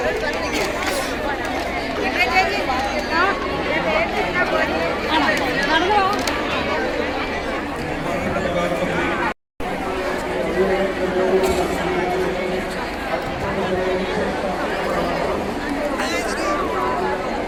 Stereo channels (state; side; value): identical; both; correlation 1.00